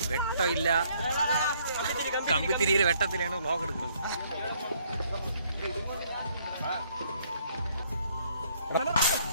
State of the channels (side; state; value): both; inverted; correlation -0.65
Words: വെട്ടമില്ല, കമ്പിത്തിരിയിൽ വെട്ടത്തിലാണ് വ്ലോഗ് എടുക്കുന്നത്.